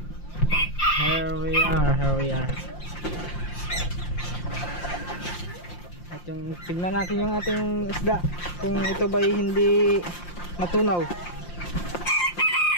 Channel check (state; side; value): late; right; 5.7 ms